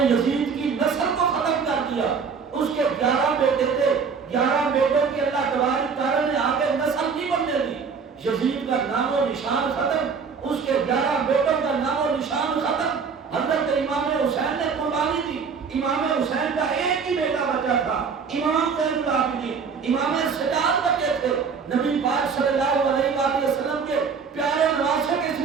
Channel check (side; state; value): left; quieter; 5.7 dB